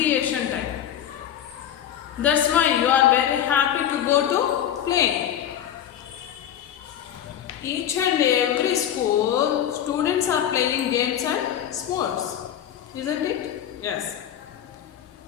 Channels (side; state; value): right; quieter; 10.3 dB